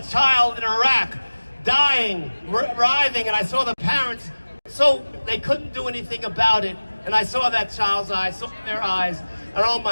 child in Iraq dying, writhing, and I saw the parents. So they couldn't do anything about it. And I saw that child's eyes, saw their eyes. And oh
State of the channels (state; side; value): inverted; both; correlation -1.00